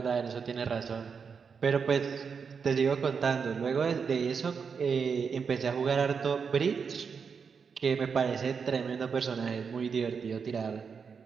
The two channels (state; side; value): quieter; left; 6.0 dB